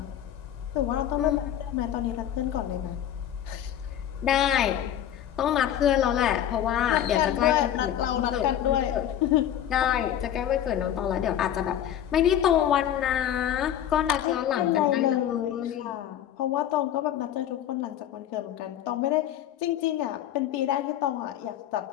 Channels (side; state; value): right; quieter; 10.7 dB